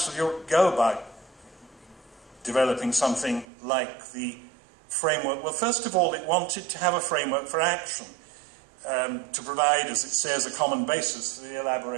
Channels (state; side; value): drops out; left; at 3.5 s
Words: of Europe go about developing something like the framework? Well, first of all, it wanted to have a framework for action, to provide, as it says, a common basis for the